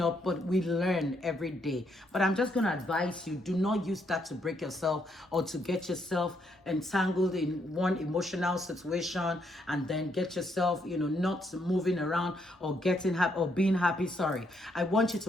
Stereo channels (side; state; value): both; normal; correlation 0.74